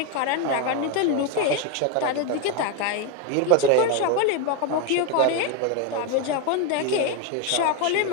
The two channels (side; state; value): both; different; correlation 0.02